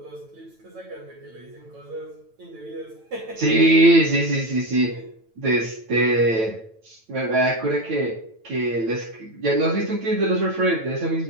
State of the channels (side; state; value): left; late; 9.0 ms